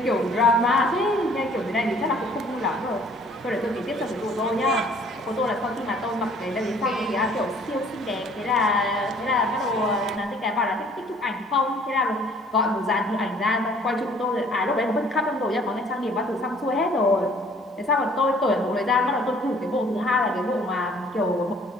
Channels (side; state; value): both; normal; correlation 0.56